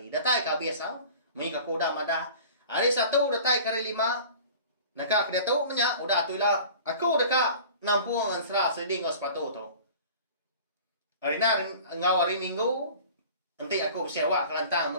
Datai ke biasa. Mi aku dah madah. Hari 1 datai ke hari 5. Nakak dia tu menyak. Udah tu lah. Aku dekat. Nampung ensera sedih ngau sepatu tu. Hari ngau hari minggu. Nanti aku bersiawak kelantang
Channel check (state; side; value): inverted; both; correlation -0.42